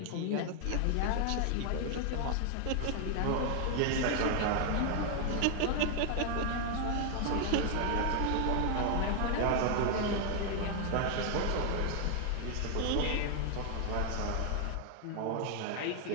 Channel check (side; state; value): both; different; correlation 0.00